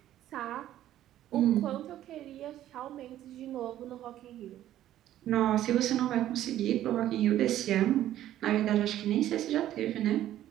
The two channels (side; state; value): left; quieter; 12.7 dB